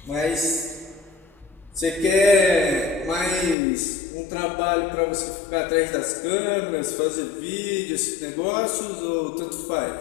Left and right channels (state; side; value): drops out; right; at 3.6 s